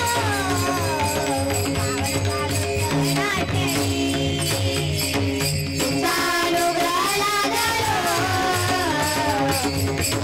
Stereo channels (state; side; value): identical; both; correlation 1.00